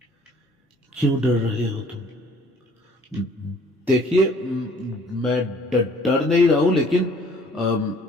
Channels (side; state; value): both; normal; correlation 0.56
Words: क्यों डर रहे हो तुम? देखिए, मैं डर नहीं रहा हूं, लेकिन